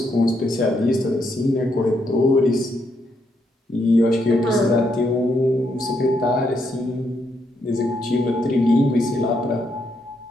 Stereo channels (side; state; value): both; normal; correlation 0.77